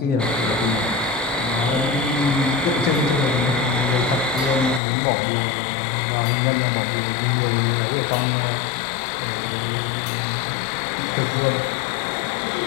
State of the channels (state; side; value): drops out; right; at 4.8 s